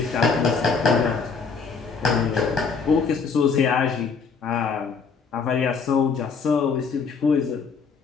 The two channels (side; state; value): right; quieter; 5.3 dB